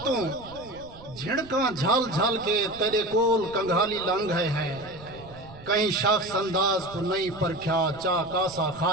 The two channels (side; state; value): right; noise; rumble, 19 dB below the sound